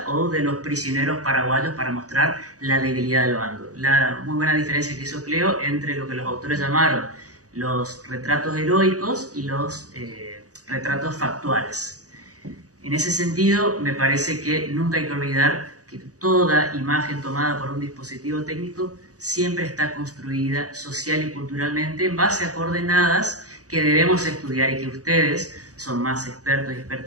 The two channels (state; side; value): late; left; 0.67 ms